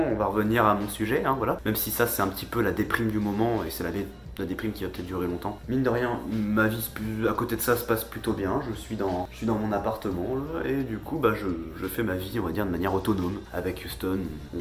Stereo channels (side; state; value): both; identical; correlation 1.00